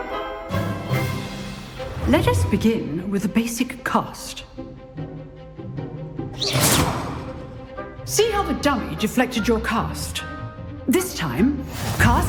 Let us begin with the basic cast. See how the dummy deflected your cast? This time,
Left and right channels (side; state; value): both; identical; correlation 1.00